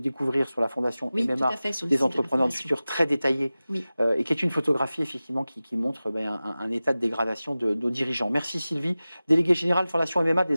sur la Fondation Oui, tout à MMA fait, sur le des site de la entrepreneurs du fondation. futur, très détaillée, Oui, et qui est une photographie effectivement qui montre un état de dégradation de nos dirigeants. Merci Sylvie, déléguée générale Fondation MMA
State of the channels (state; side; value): inverted; both; correlation -0.97